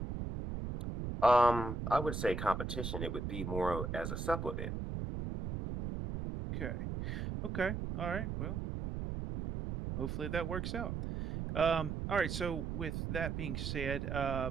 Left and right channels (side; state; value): right; noise; rumble, 3 dB below the sound